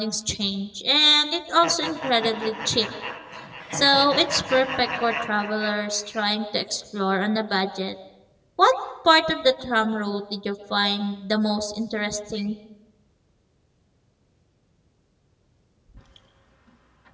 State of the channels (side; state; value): both; identical; correlation 1.00